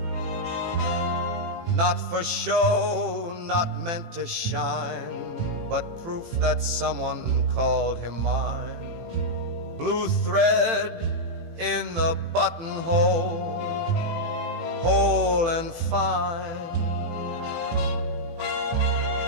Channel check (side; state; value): left; late; 18 ms